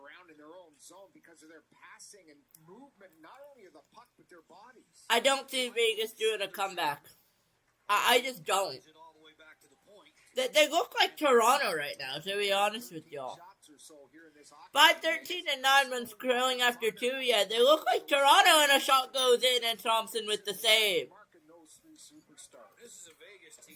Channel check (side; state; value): both; identical; correlation 1.00